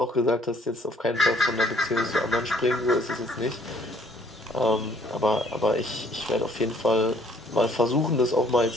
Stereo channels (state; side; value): normal; both; correlation 0.61